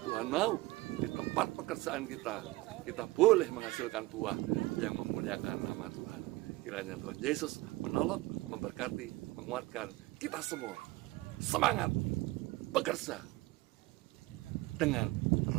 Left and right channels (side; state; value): left; quieter; 20.3 dB